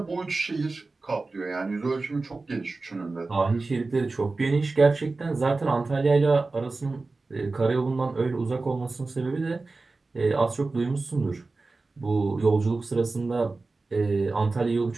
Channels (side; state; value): left; quieter; 3.6 dB